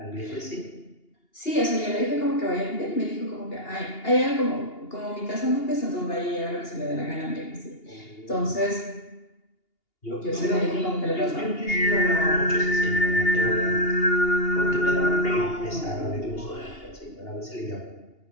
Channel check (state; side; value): late; right; 2.8 ms